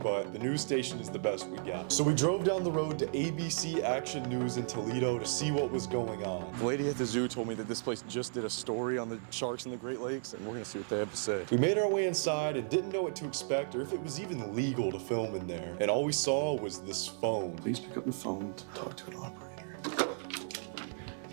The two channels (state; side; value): silent; left; 55 dB below the other